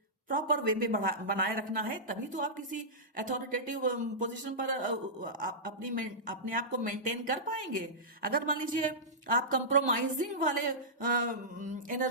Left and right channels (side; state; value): both; normal; correlation -0.15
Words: प्रॉपर वे में बनाए रखना है, तभी तो आप किसी अथॉरिटेटिव पोजीशन पर अपने आप को मेंटेन कर पाएंगे। अगर मान लीजिए आप कंप्रोमाइजिंग वाले